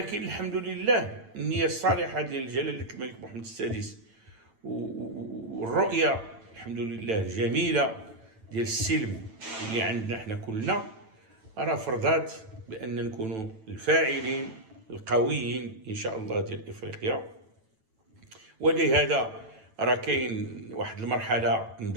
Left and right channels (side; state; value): left; late; 9.1 ms